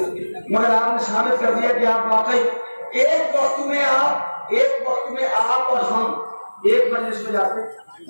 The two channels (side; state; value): both; inverted; correlation -1.00